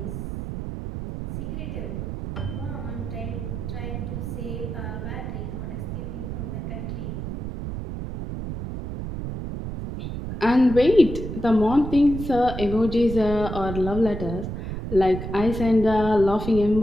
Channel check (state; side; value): noise; right; rumble, 6 dB below the sound